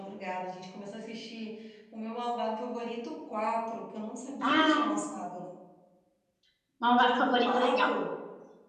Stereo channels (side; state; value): both; identical; correlation 1.00